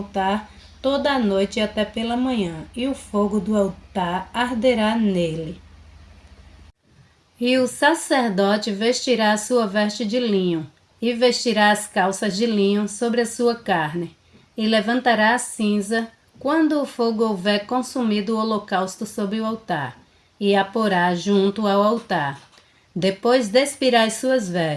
toda a noite até pela manhã, e o fogo do altar arderá nele. E o sacerdote vestirá a sua veste de linho, e vestirá as calças de linho sobre a sua carne, e levantará a cinza quando o fogo houver consumido o holocausto sobre o altar, e a porá junto ao altar. Depois despirá as suas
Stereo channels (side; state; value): both; identical; correlation 1.00